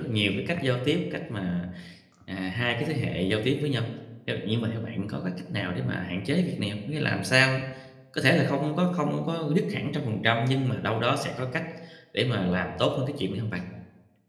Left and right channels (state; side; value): identical; both; correlation 1.00